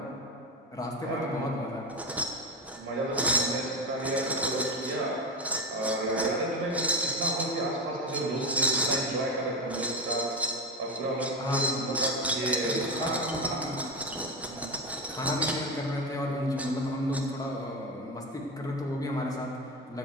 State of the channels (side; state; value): both; normal; correlation 0.18